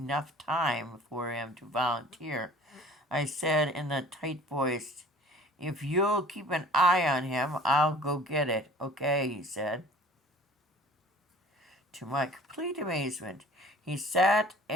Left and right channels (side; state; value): both; normal; correlation 0.48